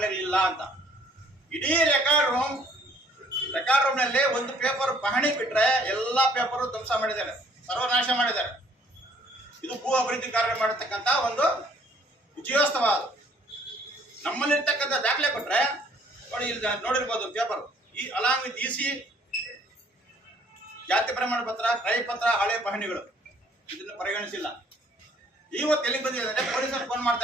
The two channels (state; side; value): normal; both; correlation 0.60